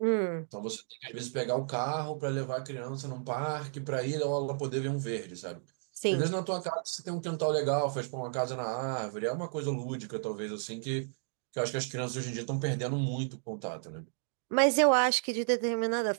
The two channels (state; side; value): silent; left; digital silence